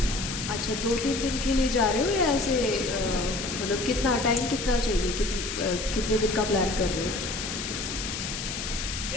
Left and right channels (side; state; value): left; noise; hiss, 5 dB below the sound